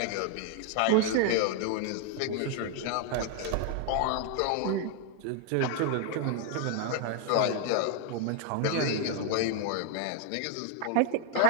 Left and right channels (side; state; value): both; different; correlation 0.00